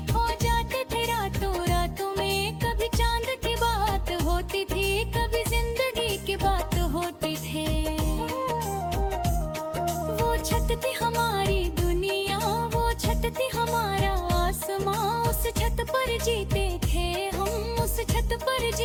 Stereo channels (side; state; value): both; identical; correlation 1.00